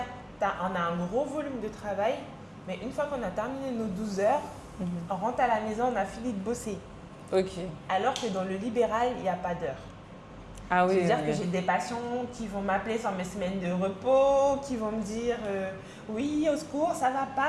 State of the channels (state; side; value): identical; both; correlation 1.00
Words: on a un gros volume de travail, mais une fois qu'on a terminé nos 12 heures, on rentre à la maison, on a fini de bosser. Ok. Alors que dans le libéral, il n'y a pas d'heure. Ah oui. C'est-à-dire que j'ai des patients qui vont m'appeler sur mes semaines de repos, qui vont me dire oui, au secours, ça va